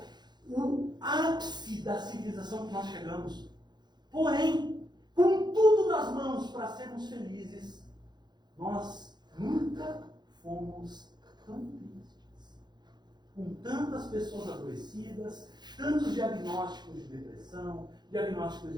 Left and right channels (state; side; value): late; left; 0.21 ms